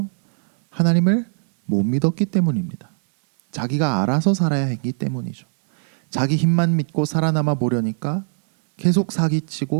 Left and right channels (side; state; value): left; silent; 65 dB below the other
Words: 하나님을 못 믿었기 때문입니다. 자기가 알아서 살아야 했기 때문이죠. 자기 힘만 믿고 살아남아 보려니까 계속